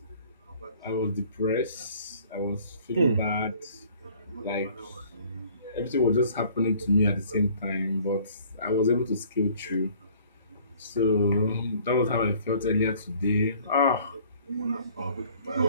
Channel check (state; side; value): inverted; both; correlation -0.55